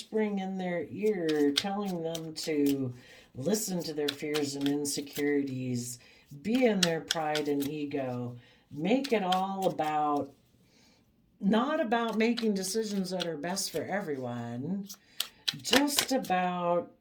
in their ear, telling them to listen to their fears and insecurities, be in their pride and ego, make it all about, not about making decisions that are best for everyone, just about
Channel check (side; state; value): both; identical; correlation 1.00